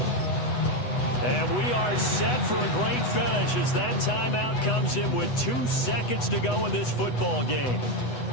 And we are set for a great finish as that timeout comes in with 2 seconds to go in this football game.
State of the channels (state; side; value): late; right; 8.1 ms